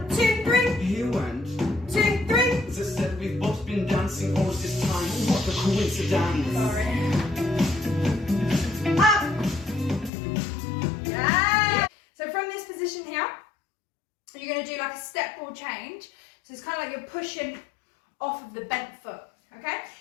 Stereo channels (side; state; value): right; drops out; at 10.1 s